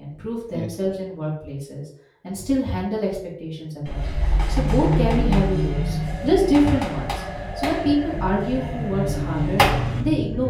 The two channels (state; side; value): identical; both; correlation 1.00